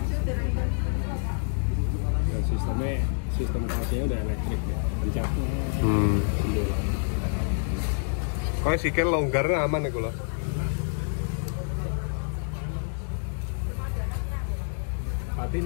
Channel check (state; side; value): silent; right; 60 dB below the other